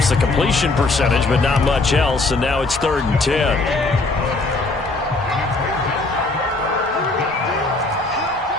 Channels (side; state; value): right; quieter; 3.3 dB